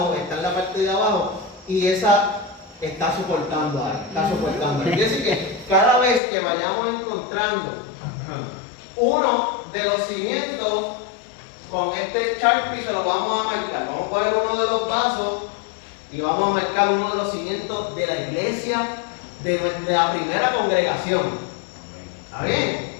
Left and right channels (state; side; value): drops out; right; at 6.2 s